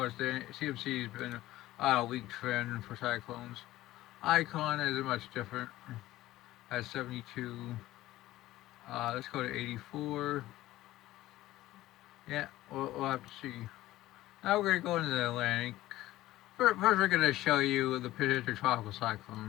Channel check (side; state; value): right; quieter; 16.0 dB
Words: the CMC has been on a weak trend for cyclones. Icon is much different at 72. Let's go to 84. Yeah, we'll have to see. Now we're going to go into the Atlantic. First, we're going to show you the potential tropical